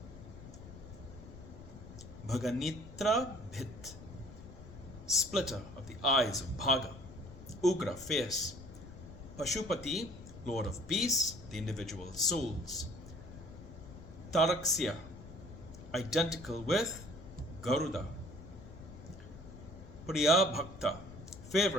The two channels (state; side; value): noise; left; rumble, 15 dB below the sound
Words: Bhaganitra Bhit, splitter of the eyes of Bhaga. Ugra, fierce. Pashupati, lord of peace, the individual souls. Taraksya, identical with Garuda. Priya Bhakta,